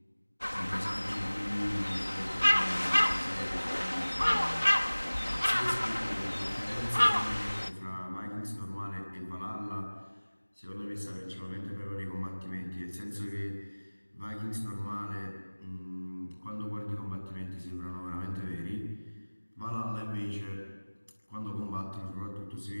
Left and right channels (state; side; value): inverted; both; correlation -1.00